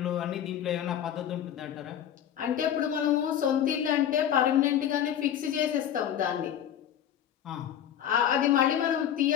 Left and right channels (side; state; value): right; quieter; 10.0 dB